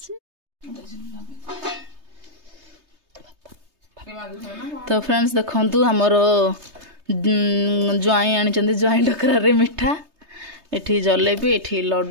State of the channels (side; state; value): left; late; 3.3 ms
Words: तो फ्रेंड्स देखंतु हमर ज्वाई आनी ज्वाई डकरा रे मिठा एठी जलेबी एठी